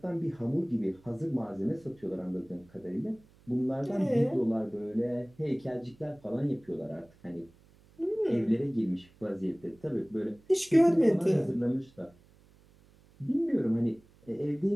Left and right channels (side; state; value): right; noise; hum, 28 dB below the sound